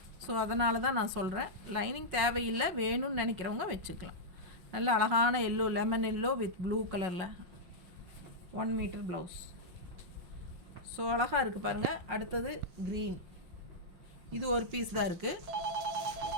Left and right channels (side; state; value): left; late; 5.5 ms